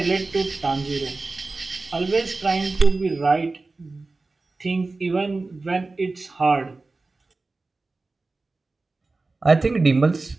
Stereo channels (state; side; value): quieter; left; 3.5 dB